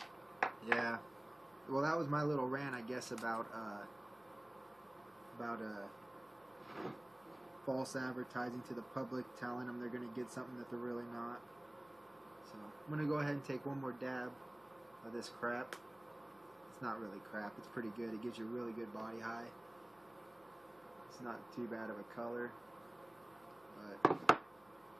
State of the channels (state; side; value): noise; left; hum, 30 dB below the sound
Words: yeah. Well, that was my little rant, I guess, about false advertising to the public, telling them they're going to get something that they're really not. So I'm going to go ahead and take one more dab of this crap. It's not really crap. It's pretty good. It gives you a really good body high. It's not too bad of a color. But